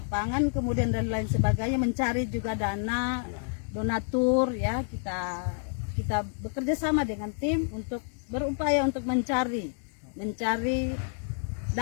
kemudian dan lain sebagainya, mencari juga dana, donatur ya. Kita bekerja sama dengan tim untuk berupaya untuk mencari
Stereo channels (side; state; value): right; silent; digital silence